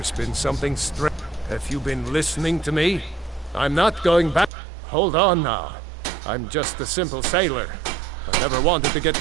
been something strange. Have you been listening to me? I'm not going back. Hold on now. I'm just a simple sailor. I never wanted to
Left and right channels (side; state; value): left; drops out; at 4.5 s